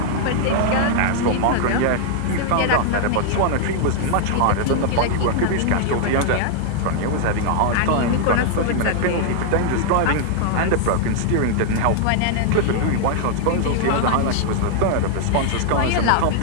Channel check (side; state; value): both; different; correlation -0.01